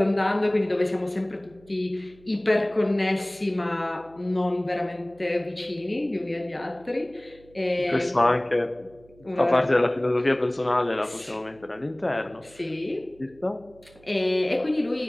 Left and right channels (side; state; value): right; noise; hum, 26 dB below the sound